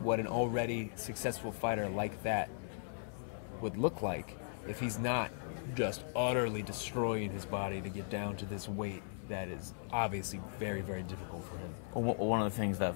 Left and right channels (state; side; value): silent; right; digital silence